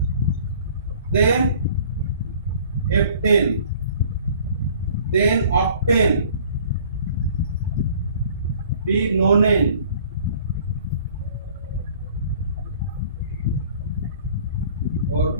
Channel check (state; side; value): inverted; both; correlation -0.52